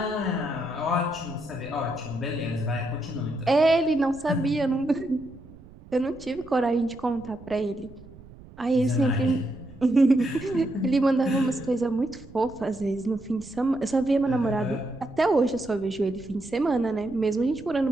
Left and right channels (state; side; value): noise; right; rumble, 20 dB below the sound